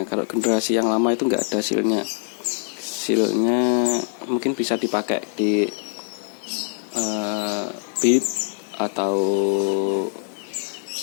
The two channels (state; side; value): silent; right; 63 dB below the other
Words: Kalau generasi yang lama itu nggak ada silnya. Silnya mungkin bisa dipakai di Beat atau